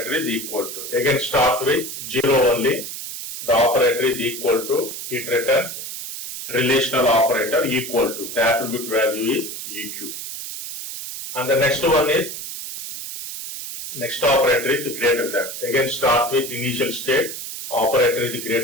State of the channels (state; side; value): noise; right; hiss, 8 dB below the sound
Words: is equal to. Again starts with 0 only. The operator is equal to. It returns relational operator equal to. The attribute value is EQ. And the next one is, next operator is greater than. Again starts with initial state. Operator is